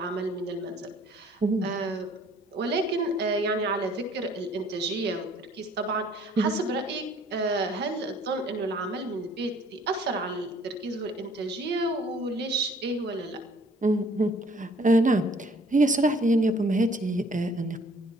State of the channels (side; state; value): both; normal; correlation 0.57